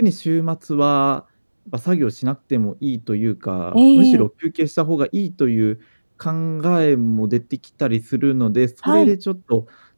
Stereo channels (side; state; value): both; inverted; correlation -1.00